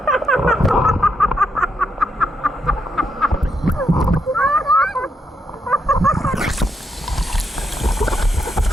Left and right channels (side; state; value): both; normal; correlation 0.79